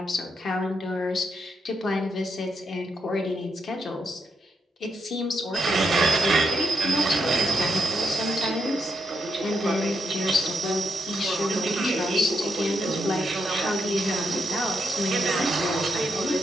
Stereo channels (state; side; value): normal; both; correlation 0.82